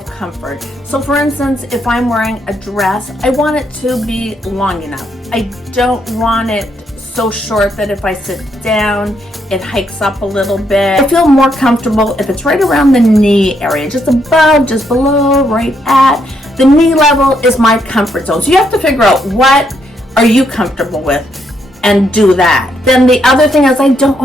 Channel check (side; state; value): both; normal; correlation 0.76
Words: comfort. So for instance, if I'm wearing a dress, I want it to be long enough. I don't want it so short that if I sit down, it hikes up a little bit. I feel more comfortable if it's right around the knee area, just above, just below, right at. The knee level is my comfort zone. So you have to figure out what are you comfortable with and do that. Then the other thing is I don't